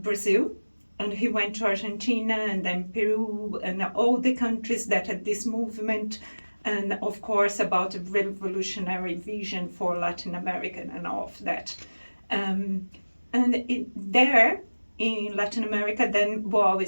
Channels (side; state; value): both; inverted; correlation -1.00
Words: and he went to Argentina and then Peru and all the countries that had this movement, and of course about a revolutionary vision for Latin America and all of that. There in Latin America, then Boal